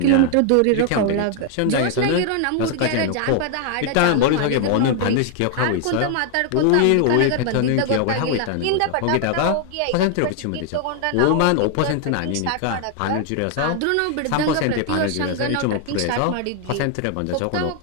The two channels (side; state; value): both; different; correlation 0.00